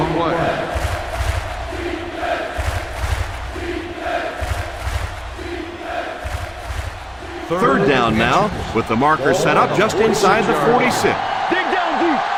play. Third down now with the marker set up just inside the 46. Dig down deep.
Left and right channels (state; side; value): identical; both; correlation 1.00